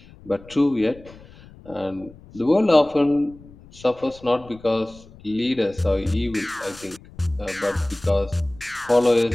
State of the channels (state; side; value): noise; left; rumble, 22 dB below the sound